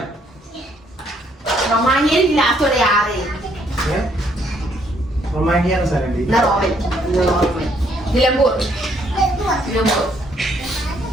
റൊമാനിയൻ ലാസ്റ്റോടെ ആറ്. റൊമാനിയ സ്ഥലം എന്നാ Roman. Nilambur Nilambur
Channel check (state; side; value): normal; both; correlation 0.69